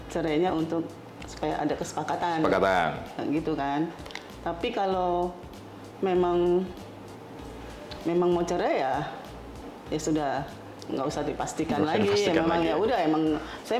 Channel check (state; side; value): identical; both; correlation 1.00